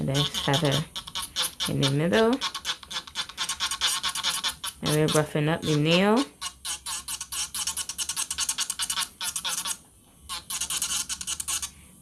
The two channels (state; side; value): identical; both; correlation 1.00